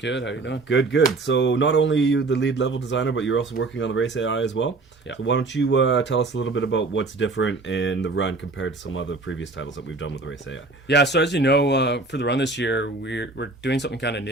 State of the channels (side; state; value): left; quieter; 3.5 dB